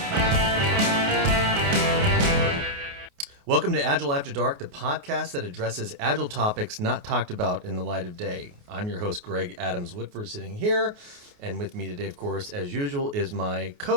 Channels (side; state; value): left; late; 28 ms